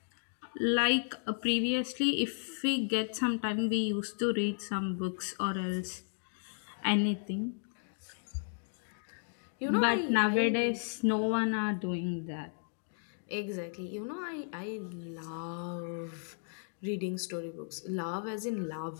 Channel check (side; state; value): right; silent; digital silence